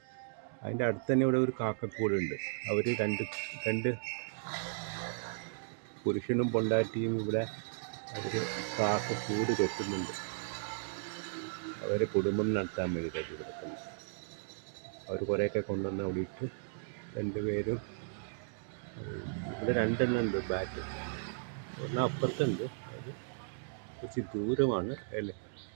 അതിൻ്റെ അടുത്ത് തന്നെ ഇവിടെ ഒരു കാക്കക്കൂടുണ്ട്. അവർ രണ്ട് പുരുഷനും പൊണ്ടാട്ടിയും ഇവിടെ അവർ കാക്കക്കൂട് കെട്ടുന്നുണ്ട്. അവരെ കുടുംബം നടത്താൻ വേണ്ടി കെട്ടി കിടക്കുന്നു. അവർ കുറേയൊക്കെ കൊണ്ടുവന്ന് അവിടെ ഇട്ട് രണ്ടുപേരും ഇവിടെ രണ്ടെണ്ണം ഉണ്ട് ബാറ്റ്. ഒരെണ്ണം അപ്പുറത്തുണ്ട്, അത് കുറച്ച് ദൂരമാണ്.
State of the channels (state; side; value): silent; left; digital silence